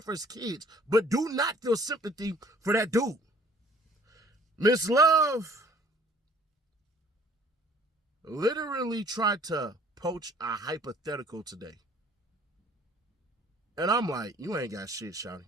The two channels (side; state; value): both; normal; correlation 0.55